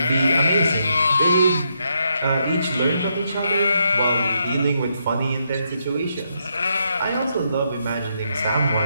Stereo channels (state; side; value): inverted; both; correlation -0.78